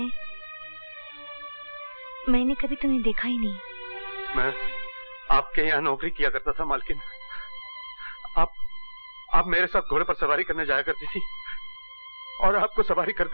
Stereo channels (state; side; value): inverted; both; correlation -1.00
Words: मैंने कभी तुम्हें देखा ही नहीं। मैं आपके यहाँ नौकरी किया करता था मालकिन। आप मेरे साथ घोड़े पर सवारी करने जाया करती थी और आपको सवारी